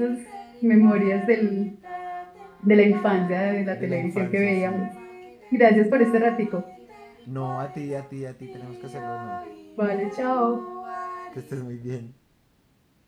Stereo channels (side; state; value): both; identical; correlation 1.00